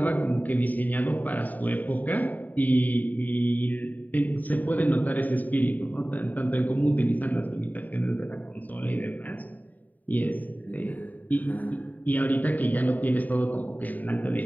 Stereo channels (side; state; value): right; late; 0.082 ms